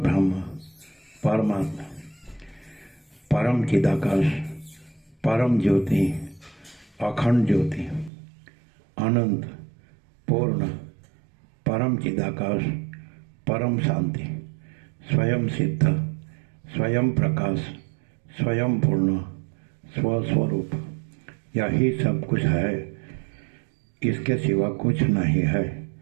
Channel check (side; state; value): left; drops out; at 8.1 s